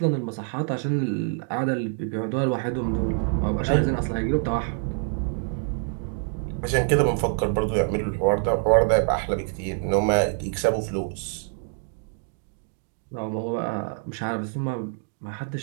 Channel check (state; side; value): silent; left; 61 dB below the other